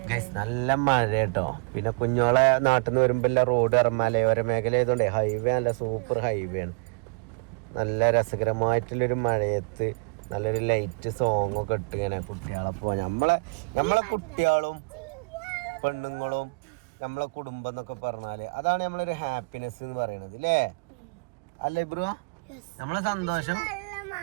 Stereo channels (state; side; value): quieter; left; 34.0 dB